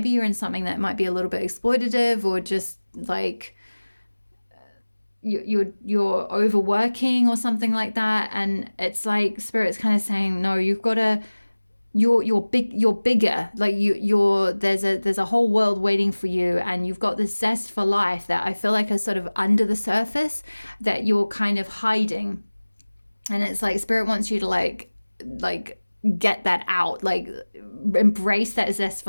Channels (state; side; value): inverted; both; correlation -1.00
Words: you're in something that might be a little bit exploitative, or just like you're overworking or something like that. And it's like Spirit's kind of saying, no, you've got to, you're bigger. Like there's a whole world waiting for you, and you've got this zest for life that I feel like is sort of under the surface that you're kind of hiding. And it's like Spirit wants you to like get that out, like embrace that zest